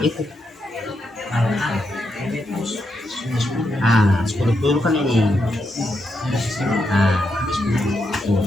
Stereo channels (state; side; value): normal; both; correlation 0.82